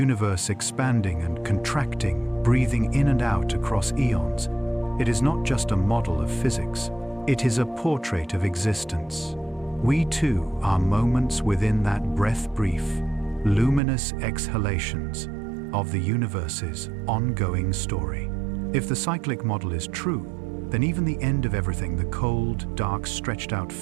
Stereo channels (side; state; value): left; drops out; at 13.8 s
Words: expanding and contracting, breathing in and out across eons, it is not just a model of physics. It is a portrait of existence. We too are moments within that breath-brief, luminous exhalations of the universe's ongoing story. If the cyclic model is true, then even the end of everything, the cold, dark, stretched-out